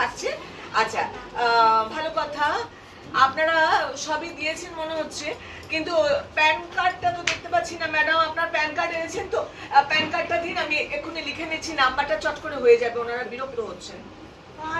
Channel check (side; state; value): both; identical; correlation 1.00